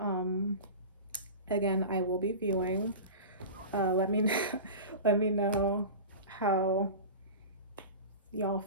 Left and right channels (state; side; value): inverted; both; correlation -0.32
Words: Again, I will be viewing. Let me let me know how y'all